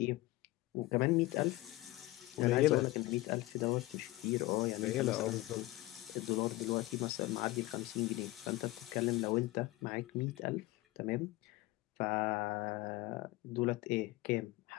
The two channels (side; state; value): right; quieter; 18.7 dB